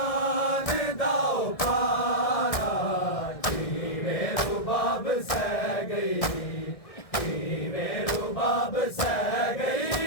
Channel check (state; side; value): late; right; 1.6 ms